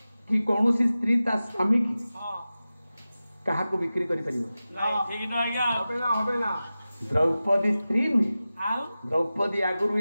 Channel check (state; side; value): inverted; both; correlation -0.95